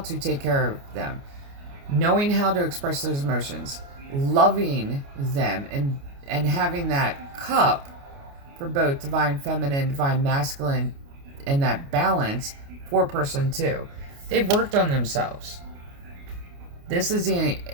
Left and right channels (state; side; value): late; left; 29 ms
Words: take care of them, knowing how to express those emotions, loving them, and having that cup for both divine feminine, divine masculine, and that balance for person 2. They've worked on themselves. This is